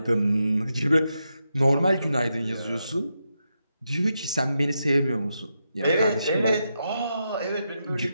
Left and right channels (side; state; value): both; inverted; correlation -0.85